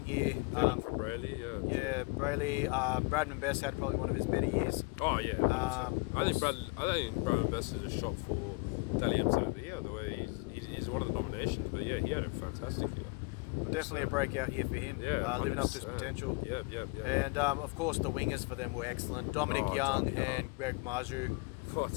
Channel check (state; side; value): quieter; right; 28.1 dB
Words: year. From Brayley, Yeah, Brayley. Bradman Best had probably one of his better years. Oh yeah. I think Bradman Best is a shot for Dally M7 of the year. The way he's one of the nominations, but yeah, he had a fantastic year. Definitely a breakout year for him, living up to his potential. Yeah. And of course, the wingers for them were excellent. Dominic Young and Greg Marju. What?